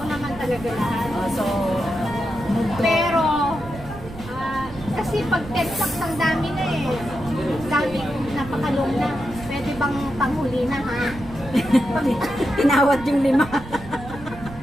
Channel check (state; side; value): noise; right; rumble, 15 dB below the sound